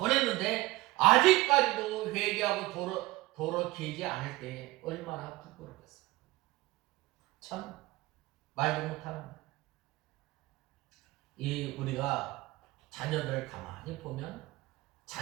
아직까지도 회개하고 돌아오지 않을 때 얼마나 부끄럽겠어요. 참 말도 못하는 거예요. 우리가 자녀들 가만히 보면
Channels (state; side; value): quieter; left; 19.4 dB